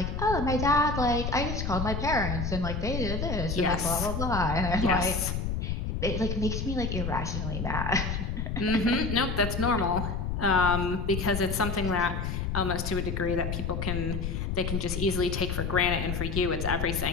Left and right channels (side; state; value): left; noise; rumble, 2 dB below the sound